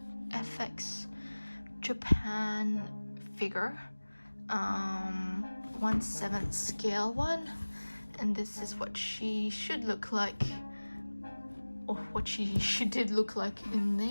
Japan figure, 1/7 scale one, and this is what she should look like, or what she did look like in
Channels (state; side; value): inverted; both; correlation -1.00